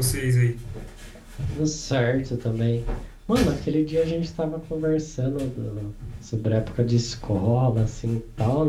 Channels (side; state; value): both; identical; correlation 1.00